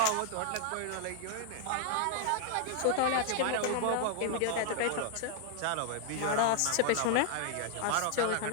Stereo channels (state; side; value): different; both; correlation 0.00